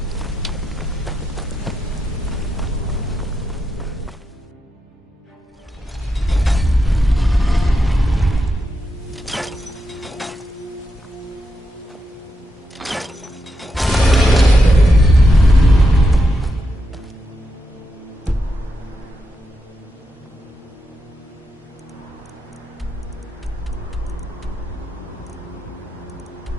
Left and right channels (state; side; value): normal; both; correlation 0.85